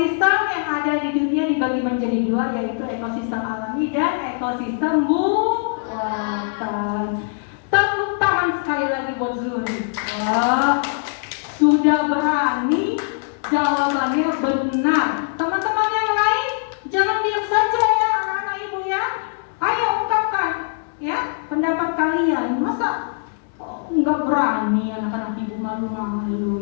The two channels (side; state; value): right; silent; digital silence